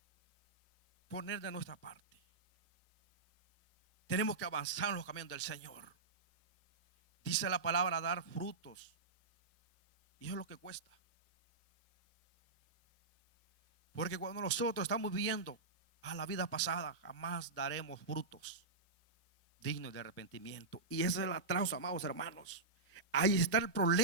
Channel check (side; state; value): left; quieter; 3.8 dB